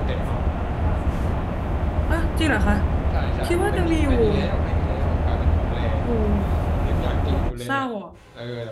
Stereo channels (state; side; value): identical; both; correlation 1.00